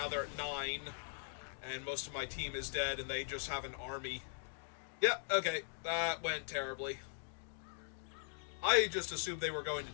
they're at 9. And most of my team is dead, and they just have an army. Yep, okay. That went terribly. I just assumed they were going to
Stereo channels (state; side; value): silent; right; digital silence